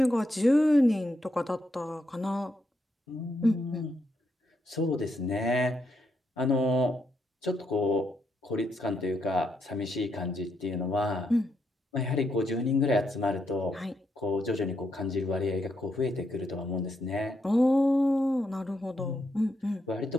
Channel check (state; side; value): normal; both; correlation 0.80